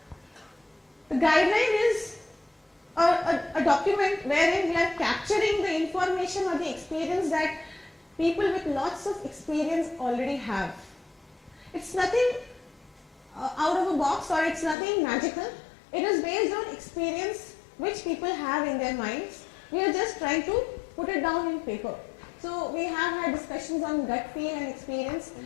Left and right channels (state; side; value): drops out; right; at 14.8 s